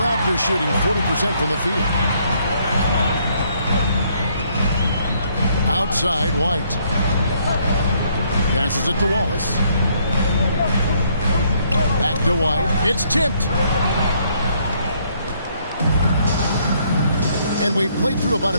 Raptors shooting 40% from the field. Outside, White. Passes it to Wallace. Back to White. It's tipped. And we've played through about a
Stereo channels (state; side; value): inverted; both; correlation -0.68